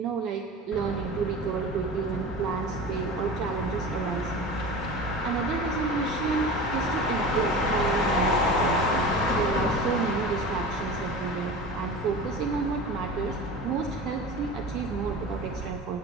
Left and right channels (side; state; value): both; normal; correlation 0.33